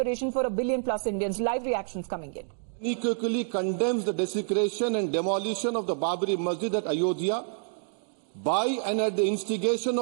for 1 billion plus Indians. Live reactions coming in. Unequivocally condemns the desecration and demolition of the Babri Masjid at Ayodhya by and at the instigation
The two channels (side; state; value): left; silent; digital silence